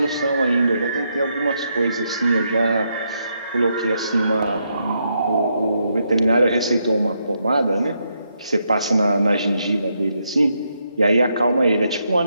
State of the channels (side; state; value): both; inverted; correlation -0.79